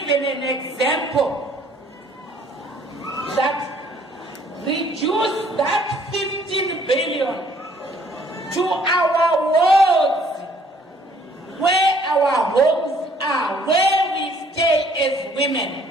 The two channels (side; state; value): both; normal; correlation 0.61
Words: an example that reduce that 15 billion to our wards, where our homes are, where we stay as women,